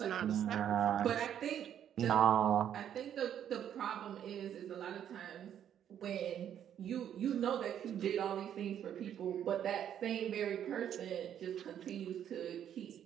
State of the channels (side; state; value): left; quieter; 9.8 dB